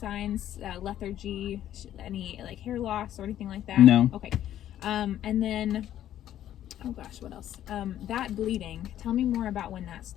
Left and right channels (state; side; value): quieter; right; 11.7 dB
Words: lethargy, any like hair loss or anything like that? No. Okay. And then, oh gosh, what else? That bleeding. Tell me more about when that